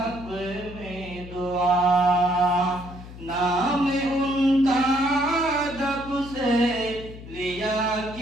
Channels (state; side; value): noise; left; hum, 15 dB below the sound